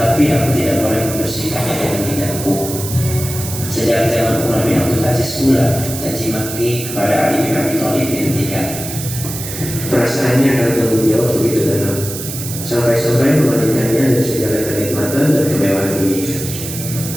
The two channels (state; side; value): noise; right; hiss, 8 dB below the sound